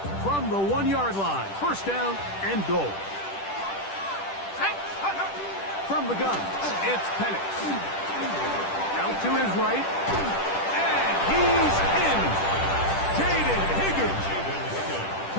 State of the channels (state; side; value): late; right; 10 ms